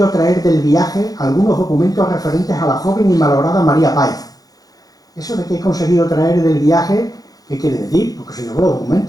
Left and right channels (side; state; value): right; late; 0.18 ms